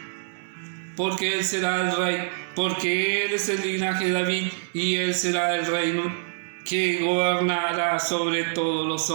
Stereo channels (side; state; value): left; silent; digital silence